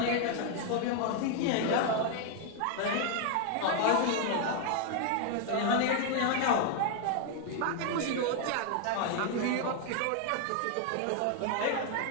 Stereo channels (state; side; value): different; both; correlation 0.00